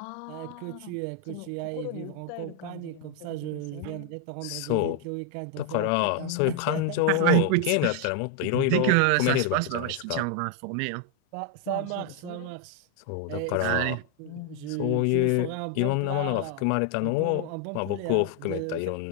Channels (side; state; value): both; different; correlation 0.00